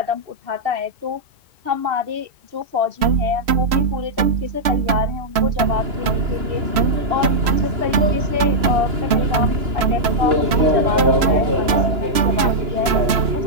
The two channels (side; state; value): left; late; 3.0 ms